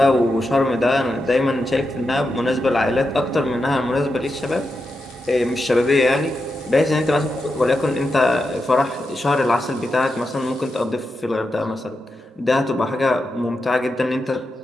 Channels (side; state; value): both; normal; correlation 0.87